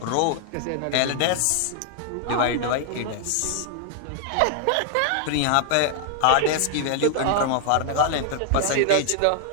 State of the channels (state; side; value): different; both; correlation 0.00